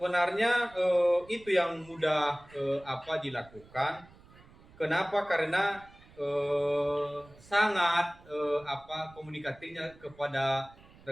itu yang mudah dilakukan. Kenapa? Karena sangat komunikasinya kepada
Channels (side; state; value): right; noise; rumble, 24 dB below the sound